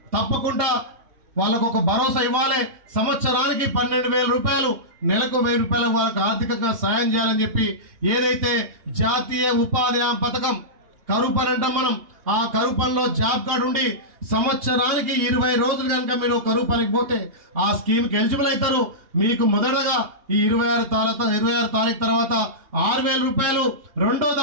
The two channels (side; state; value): left; late; 2.8 ms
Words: తప్పకుండా వాళ్ళకు ఒక భరోసా ఇవ్వాలి. సంవత్సరానికి 12,000 రూపాయలు, నెలకు 1,000 రూపాయలు వాళ్ళకు ఆర్థికంగా సాయం చేయాలని చెప్పి ఏదైతే జాతీయ ఉపాధి హామీ పథకం కరువు పని అంటాం మనం, ఆ కరువు పనిలో జాబ్ కార్డు ఉండి సంవత్సరానికి 20 రోజులు కనుక మీరు కరువు పనికి పోతే ఆ స్కీమ్కి ఎలిజిబుల్ అవుతారు. మీకు మొదటగా ఈ 26 తారీఖు తర్వాత 6,000 రూపాయలు, రెండో